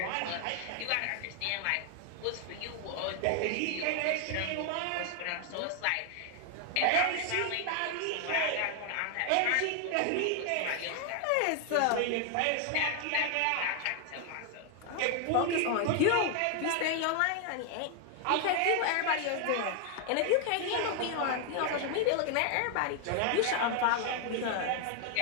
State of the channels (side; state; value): both; different; correlation 0.00